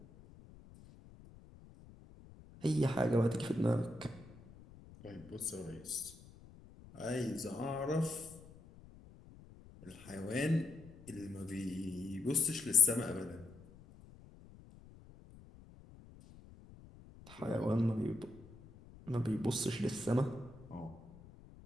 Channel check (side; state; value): left; noise; rumble, 20 dB below the sound